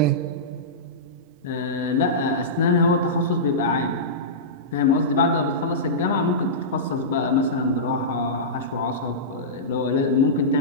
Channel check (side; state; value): both; normal; correlation -0.17